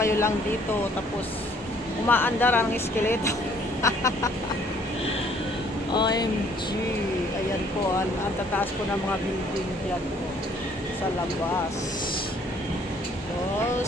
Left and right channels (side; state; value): both; normal; correlation 0.61